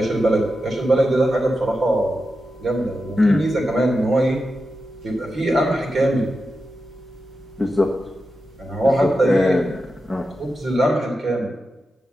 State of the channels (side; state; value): both; normal; correlation 0.90